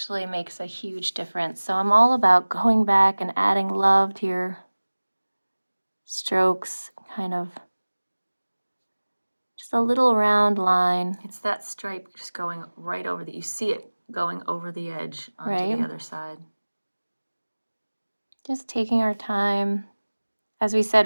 makes a huge difference. So I'm all about going back and adding love to your strokes, kind of just a little round line. It's that stripe just going right over you see it going over the edge onto Right. the other side. Just taking our time. As we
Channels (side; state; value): both; inverted; correlation -1.00